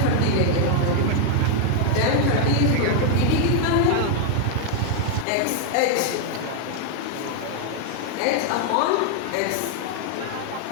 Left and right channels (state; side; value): different; both; correlation 0.00